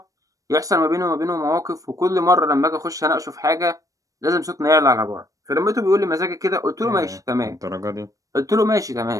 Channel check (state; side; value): late; left; 0.16 ms